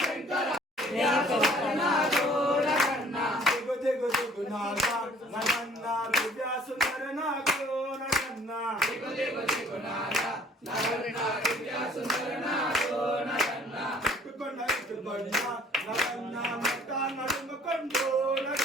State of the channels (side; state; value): both; normal; correlation 0.56